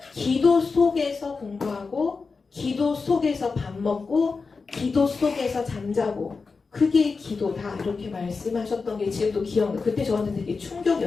기도 속에서 공부하고 기도 속에서 밥 먹고 기도 속에서 잠자고 그게 기도다 이렇게 말씀하셨던 게 지금도 기억나요. 그때 저한테 되게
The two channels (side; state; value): right; quieter; 4.5 dB